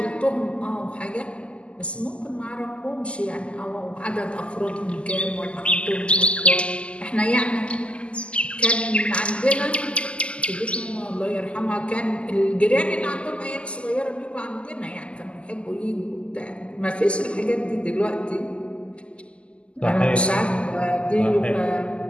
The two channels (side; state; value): right; late; 0.054 ms